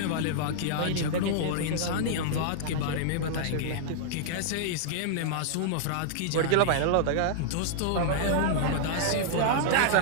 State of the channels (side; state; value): both; different; correlation -0.01